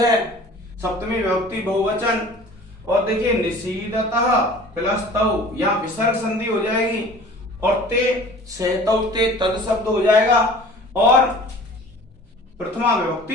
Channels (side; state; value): both; normal; correlation 0.45